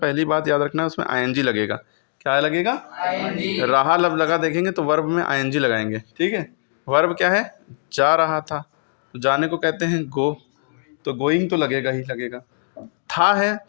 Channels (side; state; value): right; silent; 65 dB below the other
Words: बात याद रखना है, उसमें आईएनजी लगेगा। क्या लगेगा? आईएनजी। रहा लब लगा देखेंगे तो वर्ब में आईएनजी लगाएंगे। ठीक है, वर्ब क्या है? जा रहा था, तो जाने को कहते हैं गो, तो गोइंग तो लगेगा ही लगेगा। था है